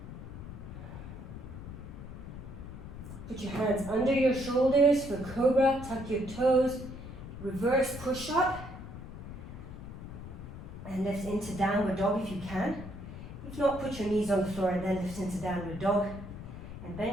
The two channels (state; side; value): noise; left; rumble, 11 dB below the sound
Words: Put your hands under your shoulders for cobra, tuck your toes, reverse push up, and lift into downward dog if you can. If not, put your knees on the floor and then lift into downward dog, and